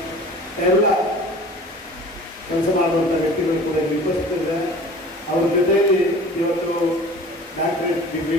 ಎಲ್ಲ ಕೆಲಸ ಮಾಡುವಂಥ ವ್ಯಕ್ತಿಗಳು ಕೂಡ ಉಪಸ್ಥಿತರಿದ್ದಾರೆ. ಅವ್ರ ಜೊತೆಯಲ್ಲಿ ಇವತ್ತು ಡಾಕ್ಟರೇಟ್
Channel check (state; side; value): normal; both; correlation 0.43